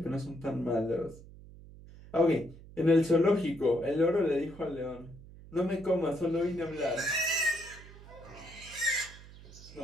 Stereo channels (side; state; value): right; noise; hum, 18 dB below the sound